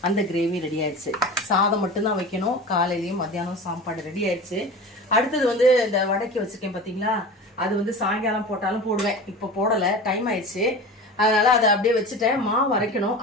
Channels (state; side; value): normal; both; correlation 0.33